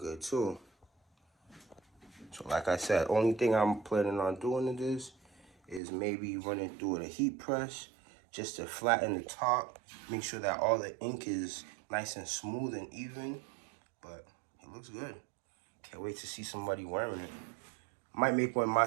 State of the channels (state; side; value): drops out; left; at 5.8 s